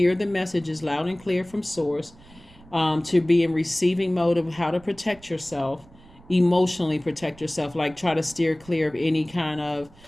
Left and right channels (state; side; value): noise; right; rumble, 24 dB below the sound